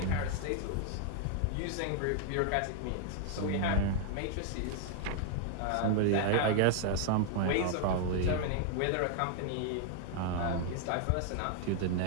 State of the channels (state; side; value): different; both; correlation 0.00